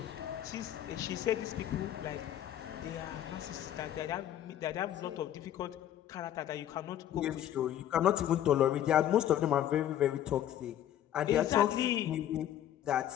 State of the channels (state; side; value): quieter; right; 11.5 dB